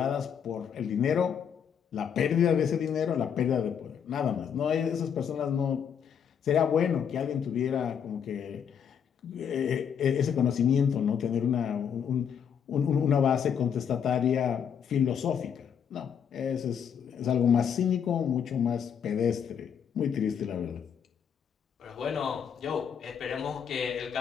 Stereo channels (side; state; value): right; quieter; 7.8 dB